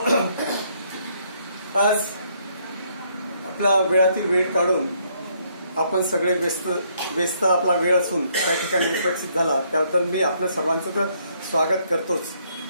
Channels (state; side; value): inverted; both; correlation -0.69